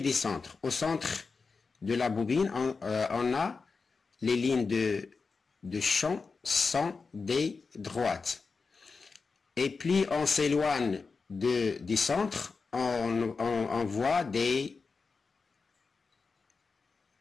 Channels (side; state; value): right; quieter; 4.6 dB